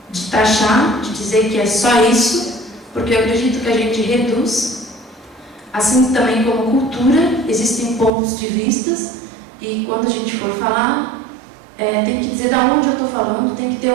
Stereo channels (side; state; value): left; drops out; at 8.1 s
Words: taxar, de dizer que é só isso, porque eu acredito que a gente reduz. Assim também como cultura, existem pontos de vistas, e quando a gente for falar, tem que dizer de onde eu estou falando, tem que ter